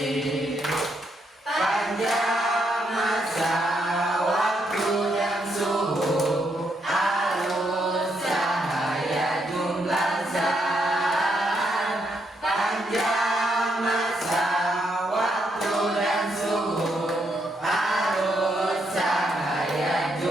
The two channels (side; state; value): both; normal; correlation 0.77